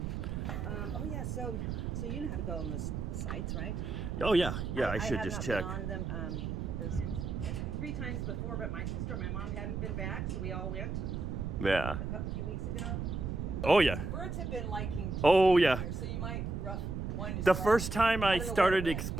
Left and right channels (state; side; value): noise; right; rumble, 3 dB below the sound